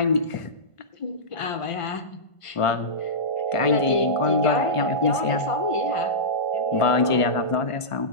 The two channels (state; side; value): late; right; 1.5 ms